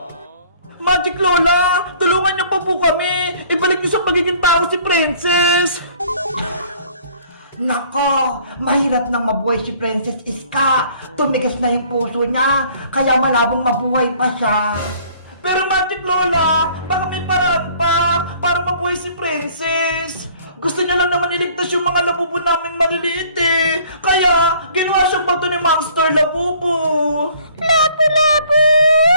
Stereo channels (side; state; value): both; inverted; correlation -0.55